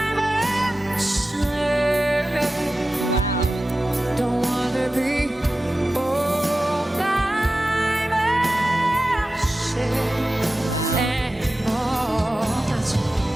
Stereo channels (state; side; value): normal; both; correlation 0.94